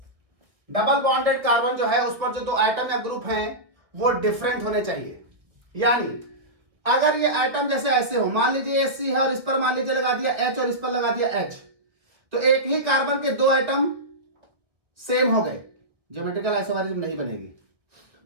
Double bonded carbon जो है उस पर जो 2 एटम या ग्रुप हैं वो डिफरेंट होने चाहिए। यानी अगर ये एटम जैसे ऐसे हो, मान लीजिए ये C है और इस पर मान लीजिए लगा दिया H और इस पर लगा दिया H, तो एक ही कार्बन के 2 एटम सेम हो गए, ज्योमेट्रिकल आइसोमेरिज्म नहीं बनेगी।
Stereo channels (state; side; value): late; left; 1.3 ms